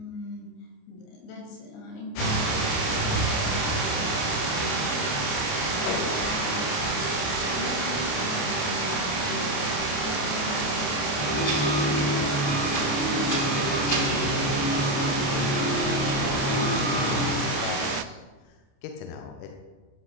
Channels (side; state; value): right; late; 28 ms